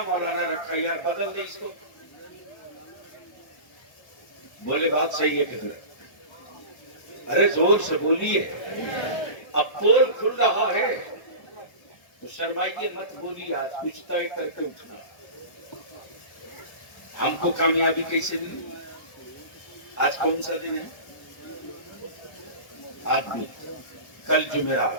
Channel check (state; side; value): late; right; 1.3 ms